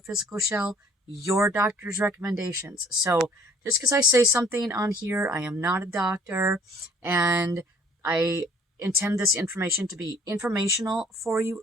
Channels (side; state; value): both; normal; correlation 0.56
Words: shell, your doctor's recommendations. So just because I say something on here, I am not a doctor, and I intend this information to be informational for you